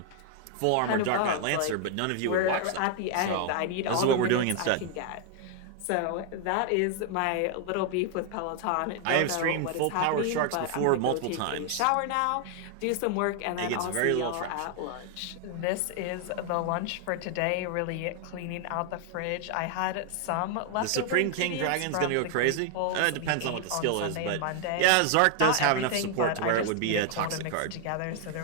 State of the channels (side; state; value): both; different; correlation 0.00